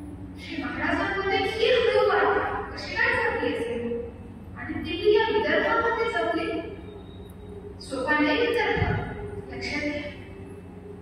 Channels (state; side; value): identical; both; correlation 1.00